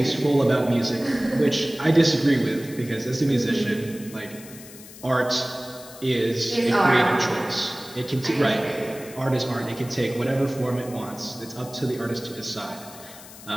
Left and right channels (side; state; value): left; noise; hiss, 17 dB below the sound